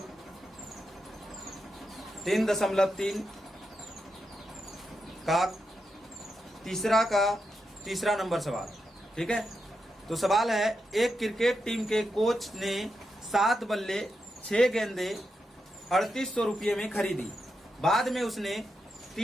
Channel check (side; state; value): both; normal; correlation 0.86